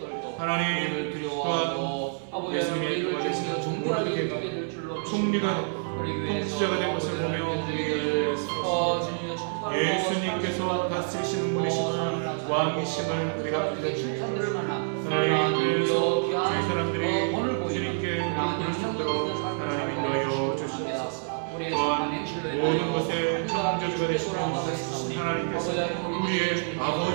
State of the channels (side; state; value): left; silent; 60 dB below the other